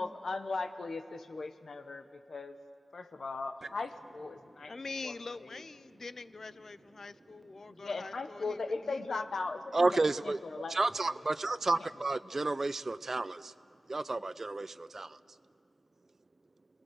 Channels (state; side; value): normal; both; correlation 0.95